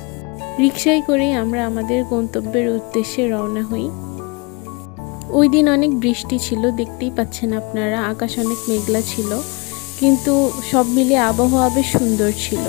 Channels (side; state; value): right; quieter; 29.5 dB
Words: রিকশায় করেই আমরা আমাদের গন্তব্যের উদ্দেশ্যে রওনা হই। ওই দিন অনেক বৃষ্টি ছিল, দেখতেই পাচ্ছেন আপনারা, আকাশ অনেক মেঘলা ছিল, কিন্তু সব মিলিয়ে আবহাওয়া বেশ সুন্দর ছিল।